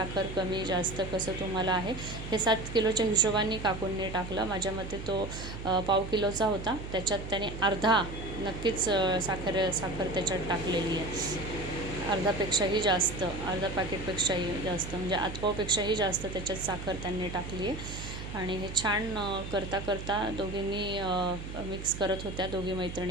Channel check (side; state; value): right; noise; hum, 9 dB below the sound